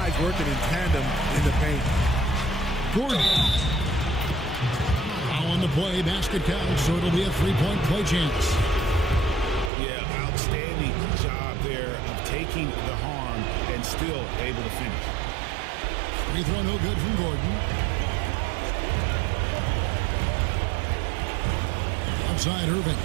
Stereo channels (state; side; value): drops out; left; at 9.7 s